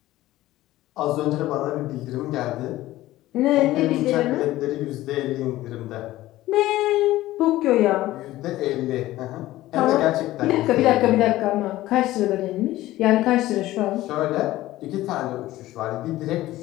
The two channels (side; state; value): right; quieter; 16.1 dB